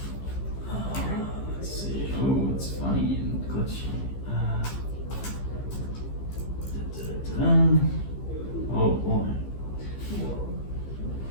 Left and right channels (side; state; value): right; late; 15 ms